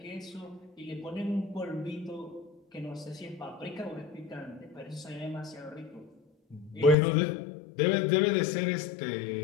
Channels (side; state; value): right; drops out; at 7.0 s